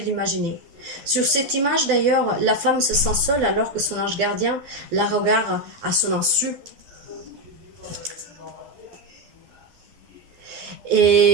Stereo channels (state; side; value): late; left; 12 ms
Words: l'imaginer. Sur cette image, d'ailleurs, la femme se sent seule alors que son ange gardien la regarde à son insu.